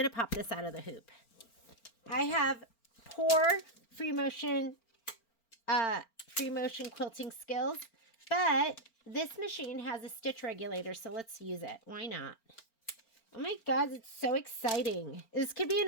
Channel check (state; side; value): late; right; 4.4 ms